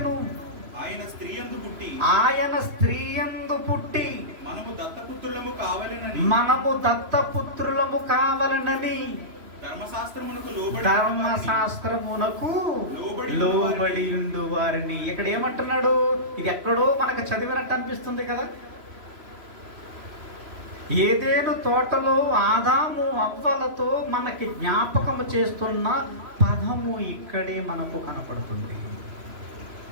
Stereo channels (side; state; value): left; late; 3.0 ms